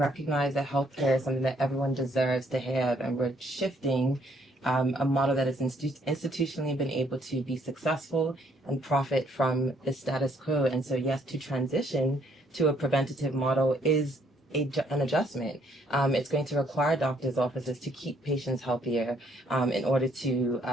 that healthcare is something that everyone deserves to have, and we're shifting a model that has institutionally been able to be successful and profit from the status quo. And so, yes, to transition to a preventative model is an adjustment. It's going to require doctors' offices to keep patients healthier in order to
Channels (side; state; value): both; normal; correlation 0.67